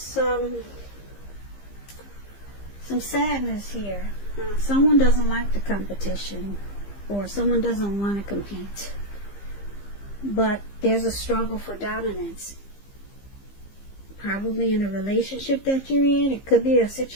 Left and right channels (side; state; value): right; late; 15 ms